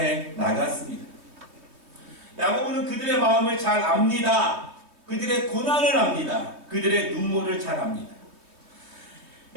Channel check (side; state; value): left; late; 3.1 ms